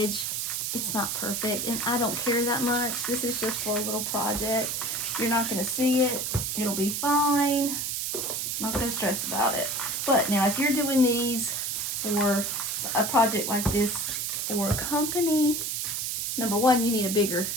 It's not perfect, and I don't care that much. This is just for a little project. You're not going to see it. It'll be fine. I'm not going to stress about it. But now, if you're doing these for a project like this for a company, number one, you need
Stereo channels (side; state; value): right; noise; hiss, 1 dB below the sound